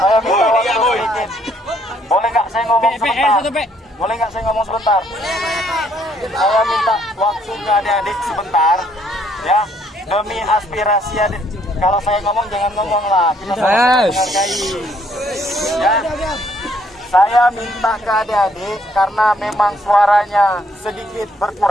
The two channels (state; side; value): normal; both; correlation 0.67